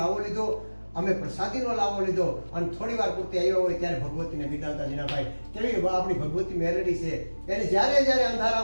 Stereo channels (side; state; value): both; inverted; correlation -1.00